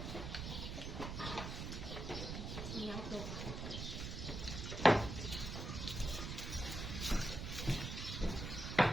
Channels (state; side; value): noise; right; rumble, 5 dB below the sound